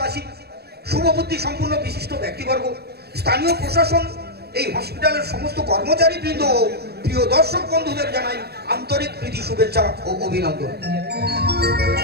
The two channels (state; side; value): late; left; 0.47 ms